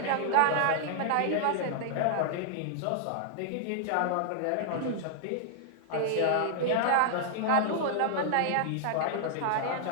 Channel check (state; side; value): different; both; correlation -0.01